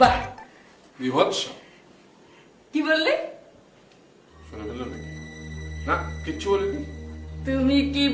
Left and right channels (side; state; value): both; identical; correlation 1.00